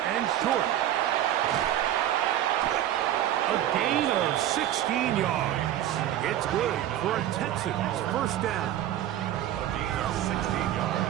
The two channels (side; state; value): left; quieter; 12.1 dB